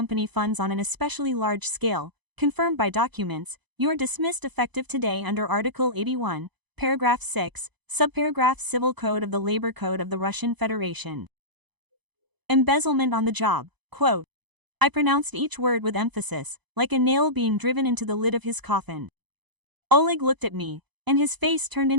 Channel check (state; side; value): late; left; 0.99 ms